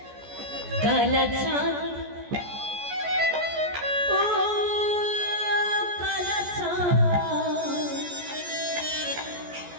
কালা চাঁদ ও কালা চাঁদ,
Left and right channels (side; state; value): left; late; 14 ms